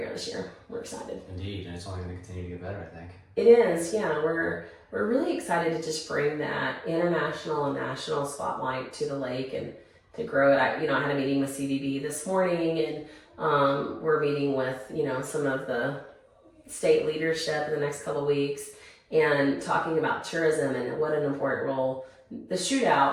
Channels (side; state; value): both; identical; correlation 1.00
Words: this year. We're excited. Indeed, and it's only going to continue to get better, I think. It is, yeah. We're really excited to just bring that international and national spotlight to the lake and to grow it. I had a meeting with CVB this morning, and we're meeting with some of the state leadership in the next couple of weeks, and talking about tourism and what an important role the